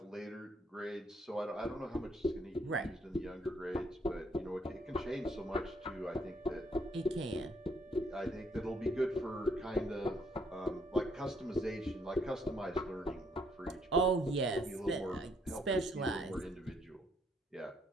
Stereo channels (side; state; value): both; normal; correlation 0.69